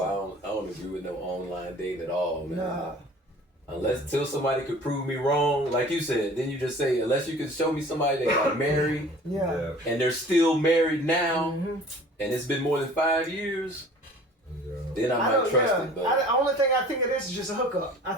I don't agree with no online dating at all, man. Nah. Unless till somebody could prove me wrong, like you said, then you just say unless you can show me somebody that got married Yeah. and they're still married now, Mhm. and it's been more than 5 years, then I might don't- trust yeah. it. But The only thing I think of this is just a hookup. I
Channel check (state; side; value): normal; both; correlation 0.46